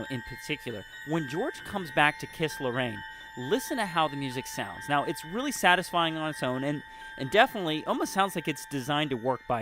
in particular. When George comes back to kiss Lorraine, listen to how the music sounds. Now, it's really satisfying on its own, and definitely almost sounds like it's designed to work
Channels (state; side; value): identical; both; correlation 1.00